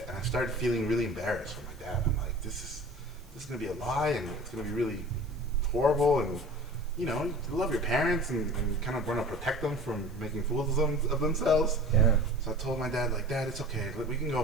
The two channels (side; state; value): right; noise; hiss, 28 dB below the sound